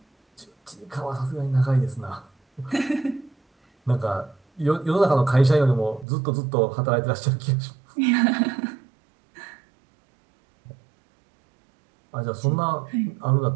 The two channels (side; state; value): left; drops out; at 6.1 s